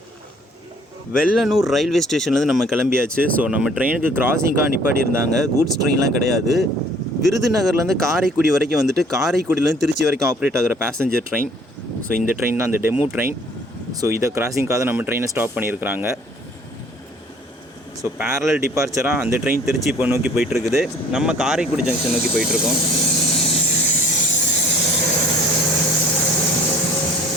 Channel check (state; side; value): normal; both; correlation 0.55